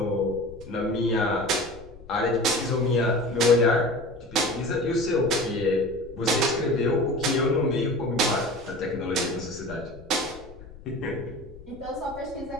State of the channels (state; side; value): noise; left; rumble, 18 dB below the sound